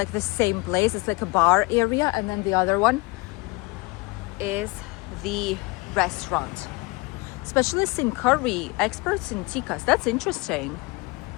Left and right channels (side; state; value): right; quieter; 25.8 dB